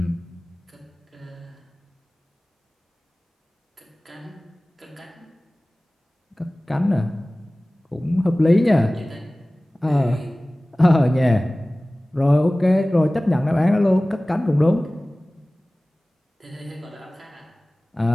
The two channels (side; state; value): both; normal; correlation 0.98